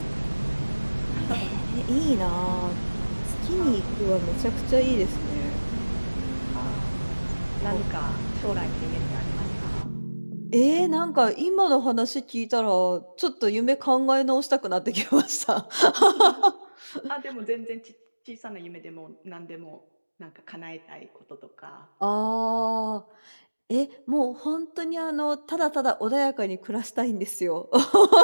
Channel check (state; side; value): inverted; both; correlation -1.00